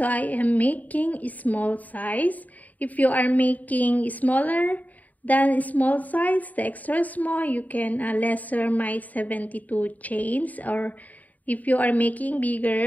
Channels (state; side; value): late; right; 0.076 ms